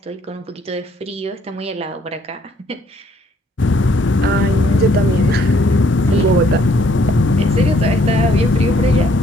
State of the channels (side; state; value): both; normal; correlation 0.65